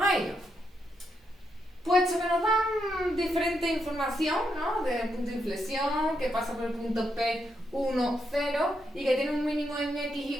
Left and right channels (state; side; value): normal; both; correlation 0.81